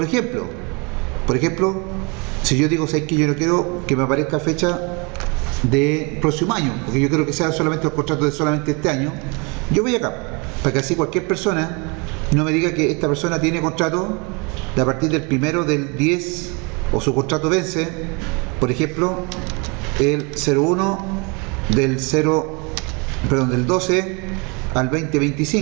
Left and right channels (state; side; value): quieter; left; 30.6 dB